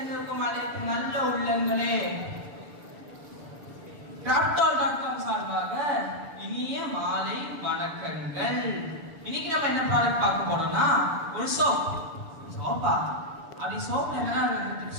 அனைத்து நல்ல உள்ளங்களே டாட்.com சார்பாக இனிய மாலை வணக்கங்கள். இன்னைக்கு நம்ம என்ன ப்ராடக்ட் பார்க்க போறோம்னா ஒரு சோப்பா. அப்படி சோப் என்ன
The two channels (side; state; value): left; late; 6.3 ms